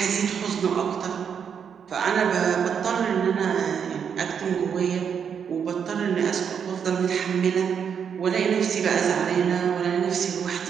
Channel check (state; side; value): quieter; left; 7.3 dB